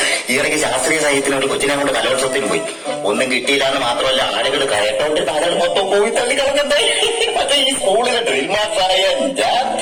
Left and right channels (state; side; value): identical; both; correlation 1.00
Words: ഈയിടയ്ക്ക് ശാസ്ത്രീയ സാഹിത്യത്തിന് ഒരു കൊച്ചിനെ കൊണ്ട് കലോത്സവത്തിന് പോയി. ഒന്നും കിട്ടിയില്ല എന്ന് മാത്രമല്ല, ആളുകൾ കയറ്റോണ്ട് ആളുകൾ മൊത്തം പോയി തള്ളി കളഞ്ഞേ. പക്ഷെ ഈ സ്കൂളിലെ ഡ്രിൽ മാസ്റ്ററായ ഞാൻ